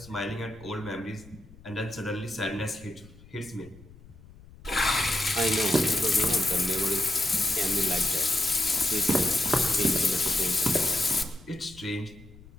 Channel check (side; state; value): left; noise; rumble, 21 dB below the sound